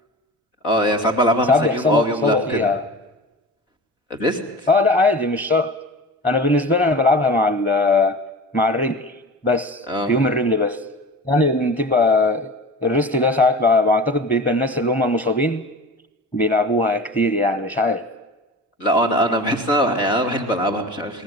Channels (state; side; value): normal; both; correlation 0.35